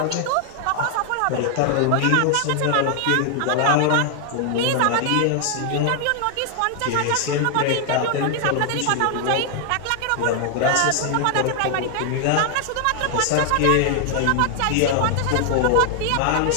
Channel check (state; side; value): different; both; correlation 0.00